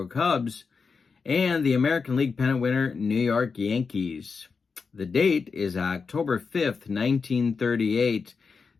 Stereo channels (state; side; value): quieter; right; 5.1 dB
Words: Cubs and the American League pennant winner New York Yankees. The date is October 5th, 1938.